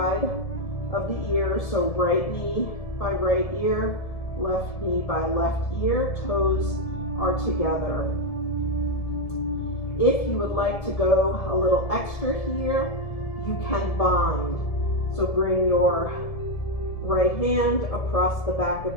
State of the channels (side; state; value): right; late; 1.7 ms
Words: of the ear. So right knee by right ear, left knee by left ear, toes are together. If you would like to go a little extra here, you can bind. So bring your right hand across the back